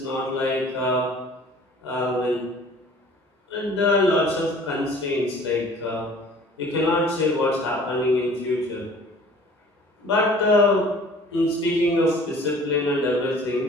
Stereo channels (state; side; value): normal; both; correlation 0.50